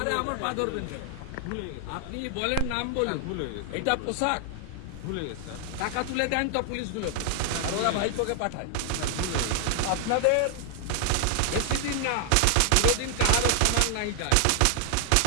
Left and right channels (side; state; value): both; different; correlation 0.00